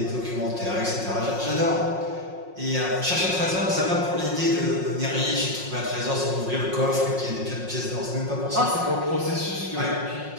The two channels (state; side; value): late; left; 5.5 ms